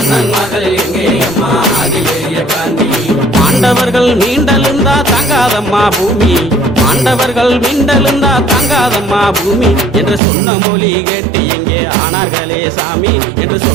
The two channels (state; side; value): drops out; left; at 10.2 s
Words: எங்கே அம்மா அதிபெரிய காண்டி பாண்டவர்கள் மீண்டெழுந்தா தாங்காதம்மா பூமி பாண்டவர்கள் மீண்டெழுந்தா தாங்காதம்மா பூமி என்று சொன்ன மொழி கேட்டு எங்கே ஆனார்களே சாமி என்று